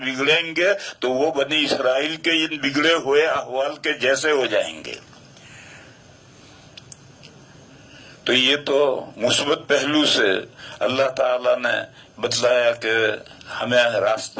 گے تو وہ بنی اسرائیل کے ان بگڑے ہوئے احوال کے جیسے ہو جائیں گے۔ تو یہ تو مثبت پہلو سے اللہ تعالیٰ نے بتلایا کہ ہمیں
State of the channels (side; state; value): both; identical; correlation 1.00